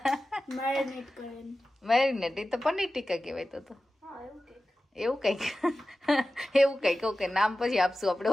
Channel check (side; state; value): both; normal; correlation 0.94